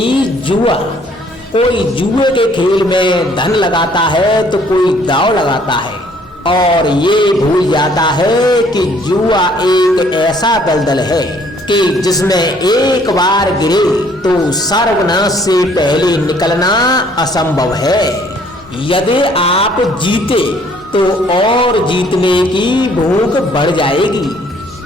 जुआ, कोई जुए के खेल में धन लगाता है तो कोई दांव लगाता है और ये भूल जाता है कि जुआ एक ऐसा दलदल है कि जिसमें एक बार गिरे तो सर्वनाश से पहले निकलना असंभव है। यदि आप जीते तो और जीतने की भूख बढ़ जाएगी,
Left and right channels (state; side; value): normal; both; correlation 0.61